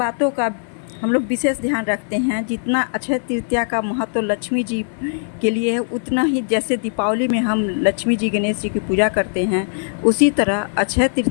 का हम लोग विशेष ध्यान रखते हैं। जितना अक्षय तृतीया का महत्व लक्ष्मी जी के लिए है, उतना ही जैसे दीपावली में हम लक्ष्मी जी, गणेश जी की पूजा करते हैं, उसी तरह अक्षय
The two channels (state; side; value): silent; right; digital silence